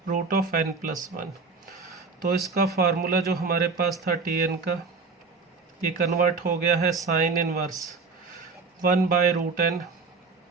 root of n plus 1। तो इसका फार्मूला जो हमारे पास था tn का, ये कन्वर्ट हो गया है sine inverse 1 by root n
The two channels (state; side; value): quieter; left; 4.4 dB